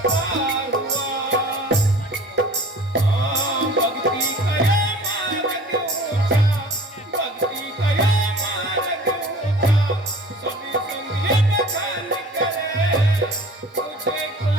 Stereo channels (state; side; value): normal; both; correlation 0.44